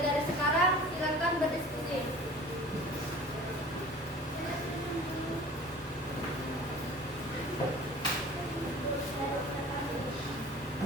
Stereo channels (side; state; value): both; normal; correlation 0.43